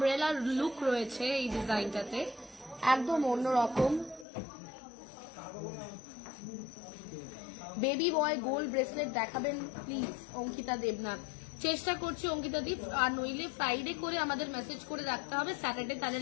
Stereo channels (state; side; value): drops out; right; at 4.2 s